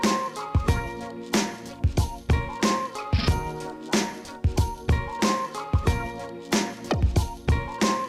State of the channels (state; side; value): identical; both; correlation 1.00